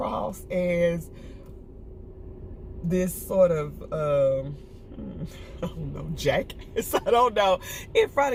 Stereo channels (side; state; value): both; identical; correlation 1.00